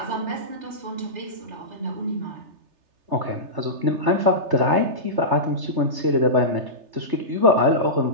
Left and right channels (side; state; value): left; late; 3.3 ms